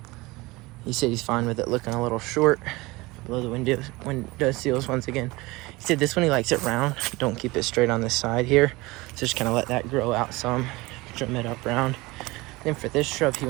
he said he's fine with it looking a little short below the window sills once again. He said this one he likes it round. Don't keep it straight on this side here. So just kind of let that grow out some. Trim it up round. Then for this shrub, he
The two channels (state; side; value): quieter; left; 22.0 dB